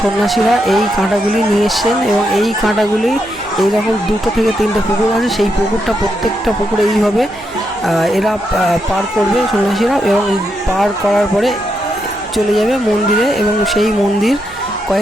এই কাঁটাগুলি নিয়ে এসছেন এবং এই কাঁটাগুলি এইরকম 2 থেকে 3টে পুকুর আছে। সেই পুকুরটা প্রত্যেকটা পুকুরে এইভাবে এরা পার করবে সন্ন্যাসীরা এবং পার করার পরে চলে যাবে মন্দিরে এবং সেই মন্দির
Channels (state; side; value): noise; right; hum, 25 dB below the sound